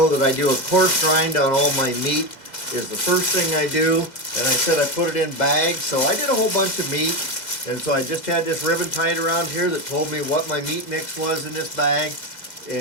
that I do a coarse grind on all my meat is the first thing I do. And I said I put it in bags, so I did a whole bunch of meat. And so I just had this ribbon tied around here that told me what my meat mix was in this bag.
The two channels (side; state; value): right; late; 2.0 ms